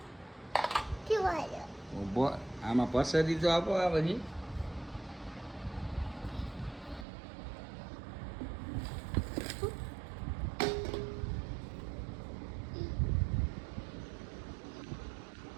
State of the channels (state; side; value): drops out; left; at 7.1 s